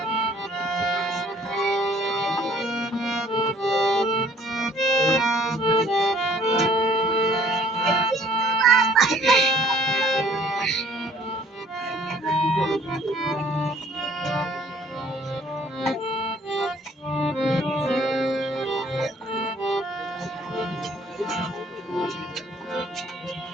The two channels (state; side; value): normal; both; correlation 0.58